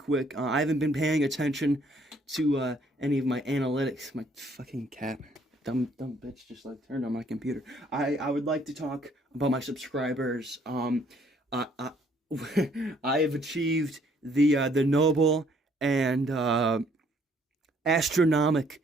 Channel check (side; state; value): both; normal; correlation 0.64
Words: I haven't been paying attention to any of my analytics. My fucking cat, dumb bitch, just like turned on my computer. I would like to talk about my subscribers. I have achieved the noble and astronomic